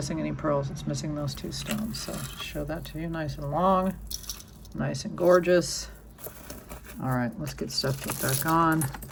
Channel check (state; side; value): identical; both; correlation 1.00